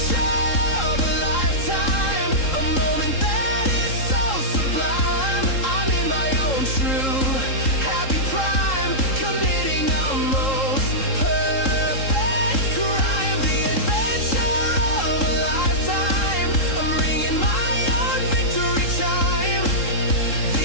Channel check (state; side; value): late; right; 3.7 ms